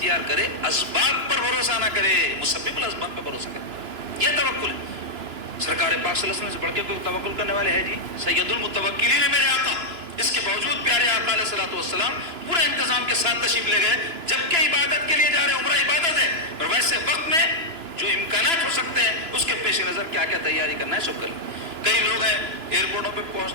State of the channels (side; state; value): left; late; 2.9 ms